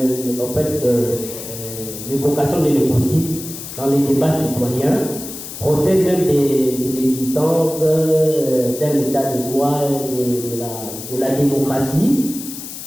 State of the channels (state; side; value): noise; left; hiss, 10 dB below the sound